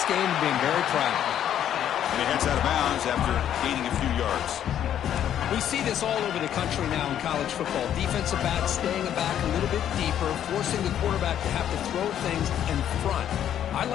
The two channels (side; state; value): right; quieter; 10.3 dB